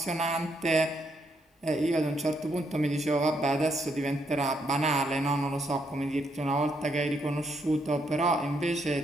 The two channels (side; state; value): both; normal; correlation 0.76